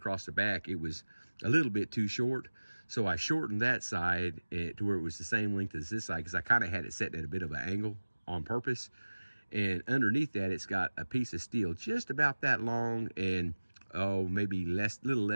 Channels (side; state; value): both; inverted; correlation -1.00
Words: the back, it was a little bit too short. So I shortened that side to where it was the same length as this side, because I kind of had it set at a bit of an angle on purpose. And underneath that, it's got a piece of steel just about that long, and maybe little